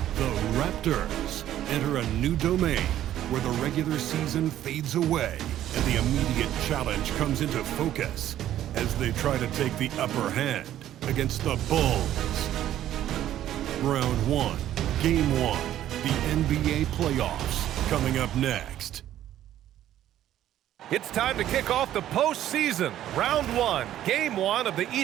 The Raptors enter a new domain where the regular season fades away and the immediate challenge comes into focus as they try to take the upper hand against the Bulls. Round 1, Game 1, the NBA playoffs coming up next. It's time to kick off the postseason. Round 1, Game 1 of the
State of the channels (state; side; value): quieter; left; 12.2 dB